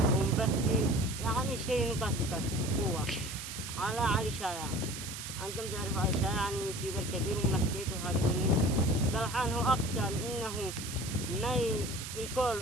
ومبكي، يعني شيء نكت قوة على علي شايع. أنتم تعرفوا علي شايع يعني يوتيوبر كبير وملكيت وهذا مني. الحين هو أقسم إنه ما يكون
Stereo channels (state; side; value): noise; right; hiss, 8 dB below the sound